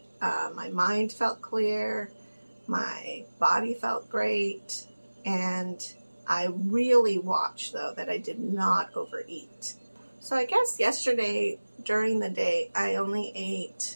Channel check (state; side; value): inverted; both; correlation -1.00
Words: My mind felt clear. My body felt great. And I really watched, though, that I did not overeat. So I guess yesterday during the day, I only